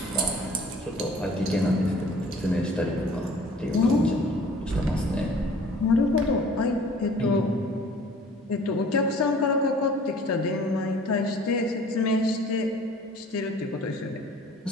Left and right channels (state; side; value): normal; both; correlation 0.50